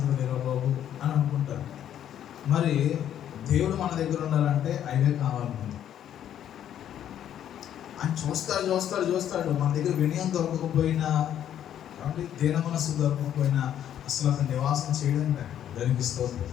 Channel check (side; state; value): right; quieter; 10.4 dB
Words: లేరు బాబు అని అనుకుంటారు. మరి దేవుడు మన దగ్గర ఉండాలంటే అవే కావాలి. ఆయన చూస్తాడు. మన దగ్గర వినయం దొరకకపోయినా, కాబట్టి దీన మనస్సు దొరకకపోయినా అసలు అతను నివాసం చేయడం దానికి స్తోత్రం.